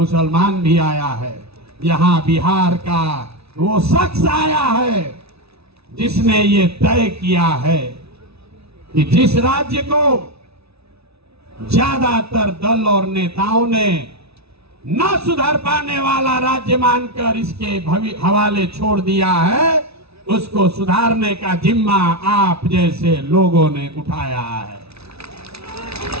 भी आया है, यहां बिहार का वो शख्स आया है जिसने ये तय किया है कि जिस राज्य को ज्यादातर दल और नेताओं ने न सुधर पाने वाला राज्य मानकर इसके हवाले छोड़ दिया है, उसको सुधारने का जिम्मा आप जैसे लोगों ने उठाया है।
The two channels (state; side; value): late; left; 0.79 ms